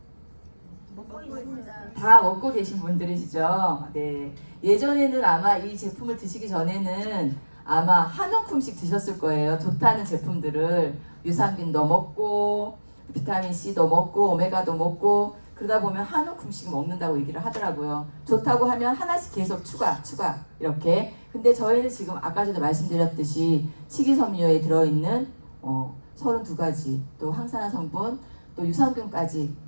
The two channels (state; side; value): inverted; both; correlation -1.00